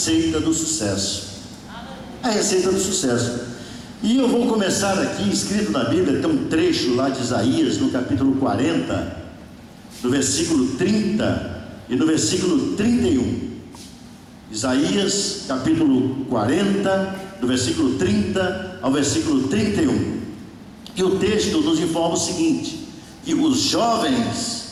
do sucesso. A receita do sucesso. E eu vou começar aqui, escrito na Bíblia, tem um trecho lá de Isaías, no capítulo 40, do versículo 30 e no versículo 31. Isaías, capítulo 40, do versículo 30 ao versículo 31. E o texto nos informa o seguinte: que os jovens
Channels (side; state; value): both; identical; correlation 1.00